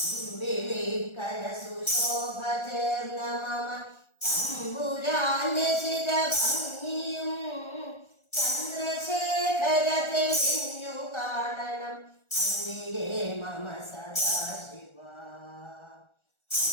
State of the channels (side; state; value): right; late; 1.4 ms